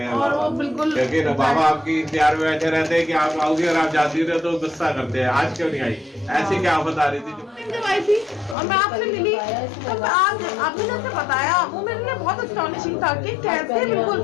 हैं, और वो बिल्कुल, क्योंकि बाबा आपकी इंतजार में बैठे रहते हैं कि आप आओगे, और आप जाती रहे तो गुस्सा करते हैं, आज क्यों नहीं आई, ऐसी क्या आफत आ रही थी जब आई थी और मैं आपसे मिली, तो आज आपने जैसे बताया, वो मेरे लिए बहुत अस्टॉनिशिंग था कि कैसे, बिल्कुल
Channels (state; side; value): drops out; right; at 8.6 s